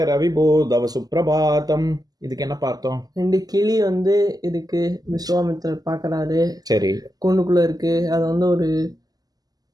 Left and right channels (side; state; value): left; late; 0.18 ms